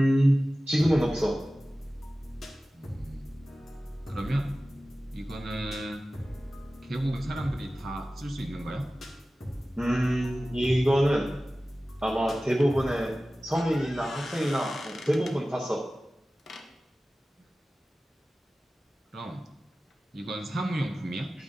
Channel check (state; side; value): normal; both; correlation 0.96